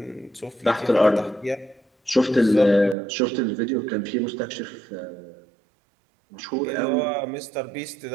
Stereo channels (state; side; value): drops out; left; at 3.0 s